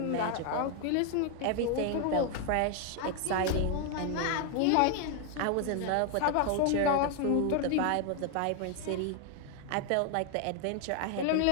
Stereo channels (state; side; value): different; both; correlation 0.00